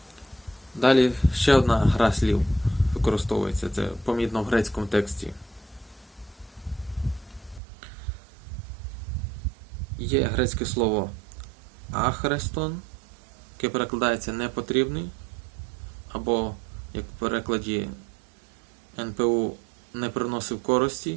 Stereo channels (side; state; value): left; drops out; at 7.6 s